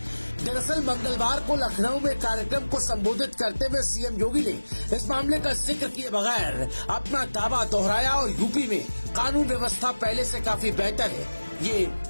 दरअसल मंगलवार को लखनऊ में कार्यक्रम को संबोधित करते हुए सीएम योगी ने इस मामले का जिक्र किए बगैर अपना दावा दोहराया और यूपी में कानून व्यवस्था पहले से काफी बेहतर है ये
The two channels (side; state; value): both; inverted; correlation -1.00